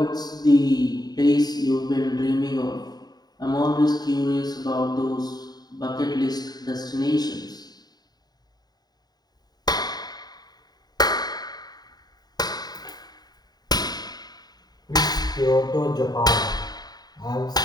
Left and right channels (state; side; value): late; right; 0.19 ms